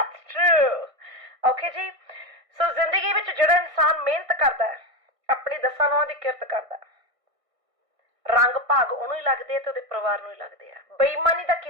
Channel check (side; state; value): left; late; 1.6 ms